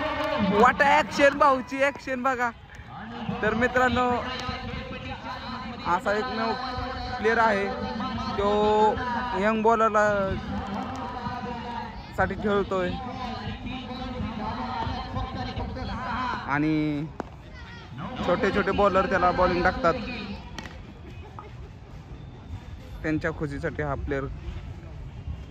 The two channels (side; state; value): both; identical; correlation 1.00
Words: वाट ऍक्शन, भाऊची ऍक्शन बघा. तर मित्रांनो असा एकमेव प्लेअर आहे तो यंग बॉलरला साठी खेळतोय आणि छोटे छोटे बॉलर त्याला बॉलिंग टाकतात. त्यांच्या खुशीसाठी हा प्लेअर